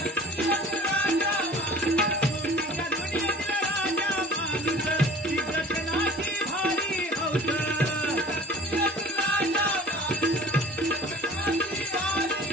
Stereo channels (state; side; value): normal; both; correlation 0.45